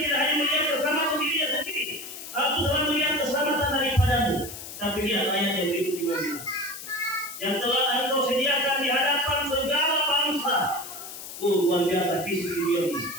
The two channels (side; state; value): left; noise; hiss, 11 dB below the sound